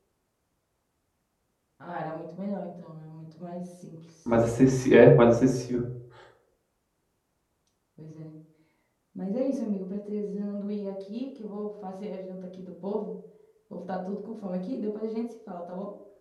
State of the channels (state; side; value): identical; both; correlation 1.00